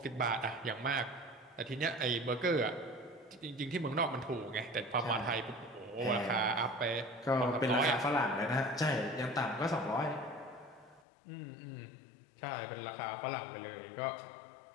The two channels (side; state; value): right; drops out; at 11.1 s